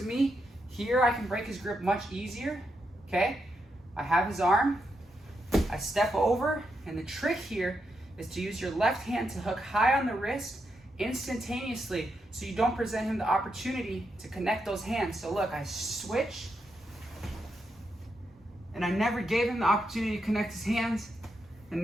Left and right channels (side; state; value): both; normal; correlation 0.83